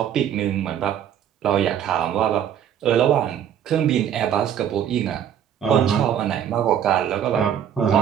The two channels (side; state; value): left; quieter; 9.5 dB